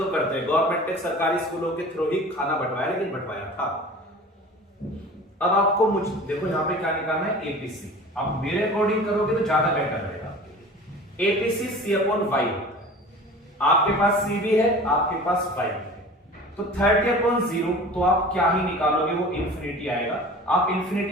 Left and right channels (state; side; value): normal; both; correlation 0.40